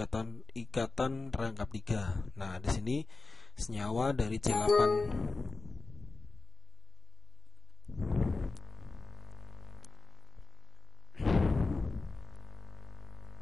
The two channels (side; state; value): right; quieter; 4.0 dB